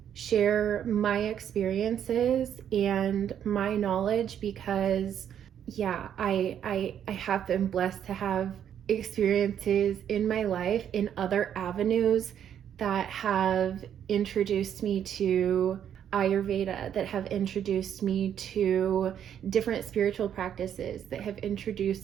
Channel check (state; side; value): quieter; left; 9.4 dB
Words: share my experiences and my knowledge, because yeah, I have been blessed to have experiences in my life in other avenues that have introduced me to Ayurveda, that have introduced me to different spiritual practices, that have